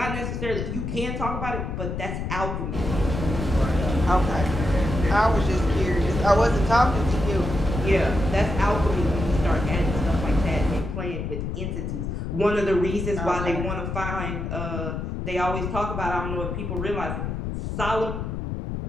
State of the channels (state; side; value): noise; left; rumble, 4 dB below the sound